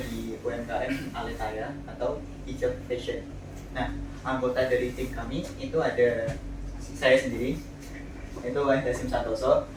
UMKM Aletaya atau Hijab Fashion. Nah, anggota dari tim kami itu ada saya sendiri, itu Wahid Hasim Santoso,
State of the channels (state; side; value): identical; both; correlation 1.00